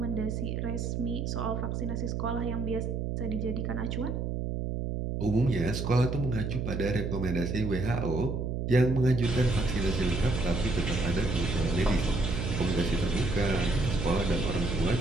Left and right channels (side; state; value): right; noise; hum, 2 dB below the sound